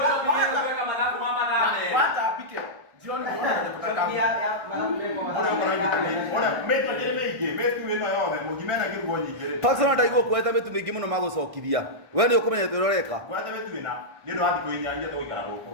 Kwanza apike. Jioni Ona metu ndĩrĩ mĩingĩ, metu ĩno yothe mũngima ĩna kĩrugo nyingĩ. Pastor ndaigua kueta mitu mingi muno magũcokithia. We nĩ ũkũmenya tũroreka. Kwenda metu ĩna nĩ ũndũ wa thikũ inya iria tũgũikara gũkũ.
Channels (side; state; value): left; late; 1.6 ms